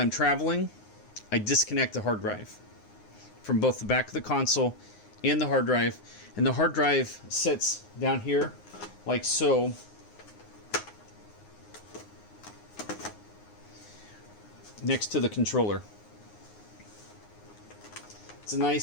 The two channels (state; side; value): late; right; 9.6 ms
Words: traveling, I disconnect the hard drive from both the back of the console and the hard drive. And the hard drive sits down here like so. Next to the controller. It's a